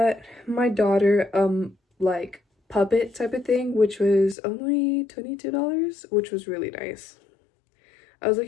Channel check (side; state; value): right; drops out; at 4.4 s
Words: my daughter, like, puppet type of thing, which was only $22, which was really nice. I was